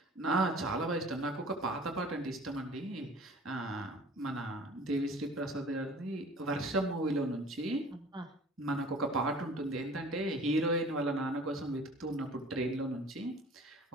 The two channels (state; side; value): normal; both; correlation 0.47